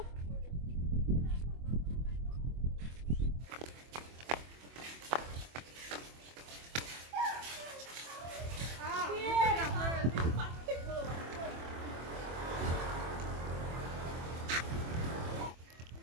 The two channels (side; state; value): left; late; 24 ms